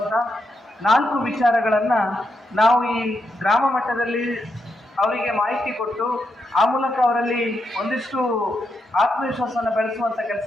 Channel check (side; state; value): both; normal; correlation 0.83